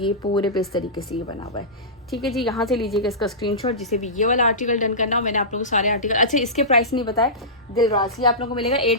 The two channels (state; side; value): normal; both; correlation -0.18